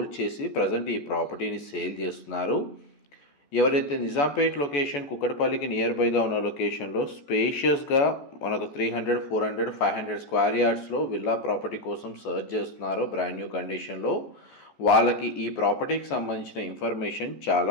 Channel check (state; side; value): late; right; 14 ms